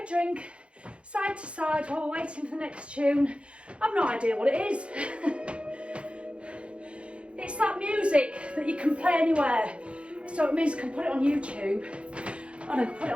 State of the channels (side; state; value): left; late; 0.059 ms